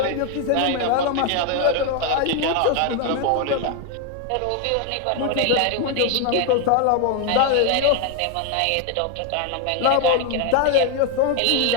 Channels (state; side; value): different; both; correlation 0.01